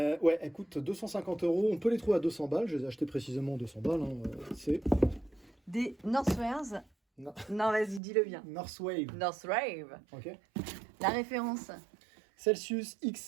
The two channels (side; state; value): left; drops out; at 8.0 s